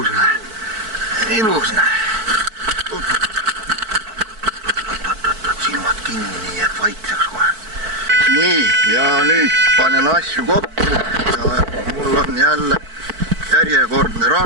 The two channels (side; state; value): left; late; 4.5 ms